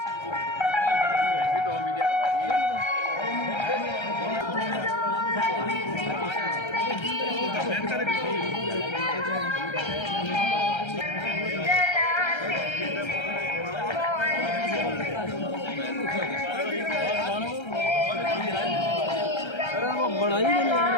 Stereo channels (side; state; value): right; late; 1.3 ms